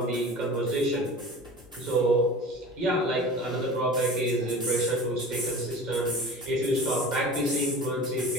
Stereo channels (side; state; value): both; normal; correlation 0.38